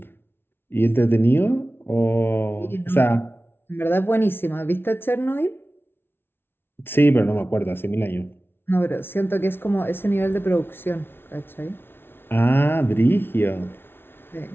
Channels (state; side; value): late; right; 0.11 ms